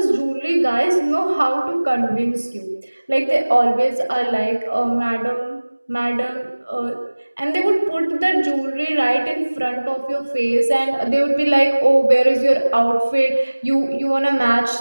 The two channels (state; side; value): inverted; both; correlation -1.00